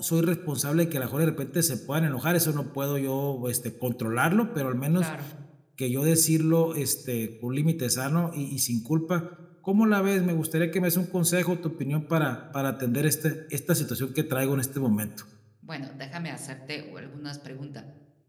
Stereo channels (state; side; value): identical; both; correlation 1.00